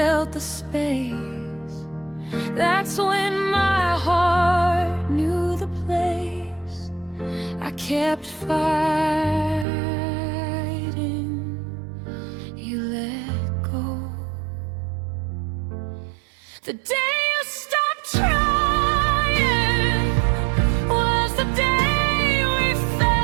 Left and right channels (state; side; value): drops out; left; at 9.7 s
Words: the space. That's when my heart knew the place. I kept fighting, you let go. The day you stopped trying was the day we